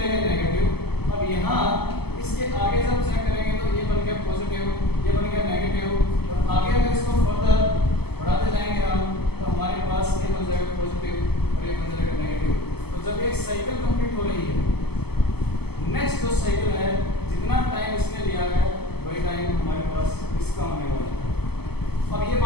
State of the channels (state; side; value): late; right; 0.96 ms